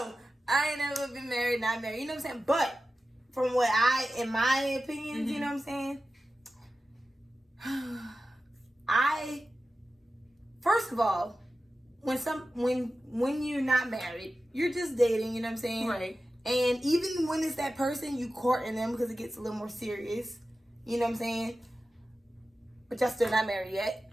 I ain't never been married, not married. You know what I'm saying? But from what in my opinions, you know what I'm saying? First of all, when you're not married, you're just dating, you know what I'm saying? Right. And even when it's that person, you courting them because it gets a little more serious. You know what I'm saying? But y'all still not married yet.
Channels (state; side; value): normal; both; correlation 0.93